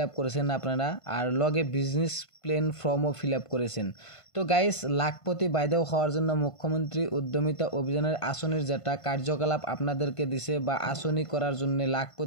আপ করেছেন আপনারা, আর লগে বিজনেস প্ল্যান ফর্মও ফিল আপ করেছেন। তো গাইস, লাখপতি বাইদেও হওয়ার জন্য মুখ্যমন্ত্রী উদ্যমিতা অভিযানের আসনের যেটা কার্যকলাপ আপনাদেরকে দিছে বা আসনি করার জন্য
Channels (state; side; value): late; right; 1.5 ms